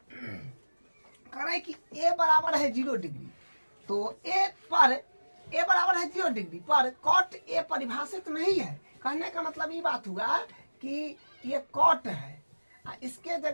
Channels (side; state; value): both; inverted; correlation -1.00